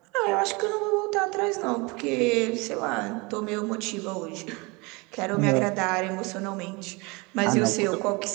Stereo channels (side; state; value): left; quieter; 26.9 dB